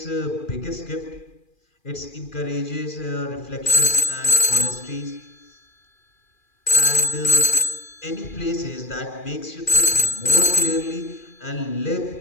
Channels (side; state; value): right; late; 2.4 ms